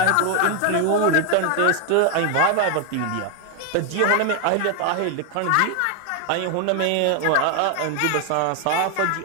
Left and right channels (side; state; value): both; different; correlation 0.01